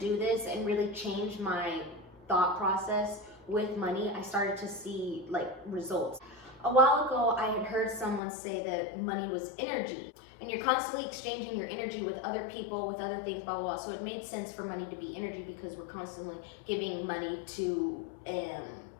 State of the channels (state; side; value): drops out; right; at 8.2 s